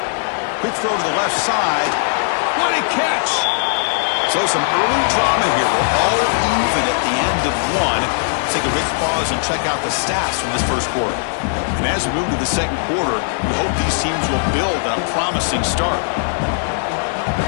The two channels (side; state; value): right; silent; digital silence